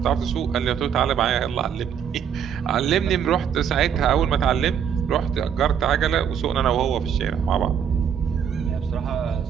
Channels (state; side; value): quieter; left; 8.1 dB